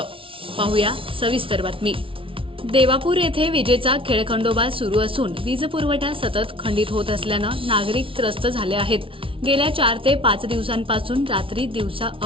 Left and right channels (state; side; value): late; left; 0.25 ms